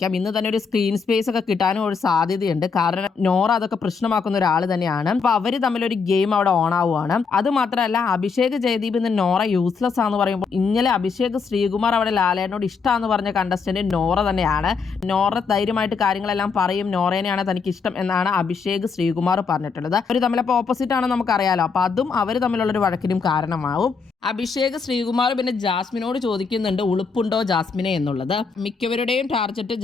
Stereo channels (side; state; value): right; quieter; 5.3 dB